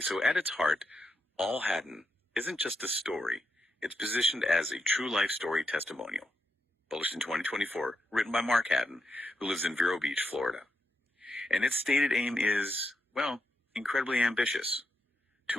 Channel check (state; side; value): normal; both; correlation 0.83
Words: at its heart, All Haddon isn't just a story. It's positioned as a true life story testimonial. Published in 2024, written by Mark Haddon, who lives in Vero Beach, Florida. And its stated aim is, incredibly ambitious.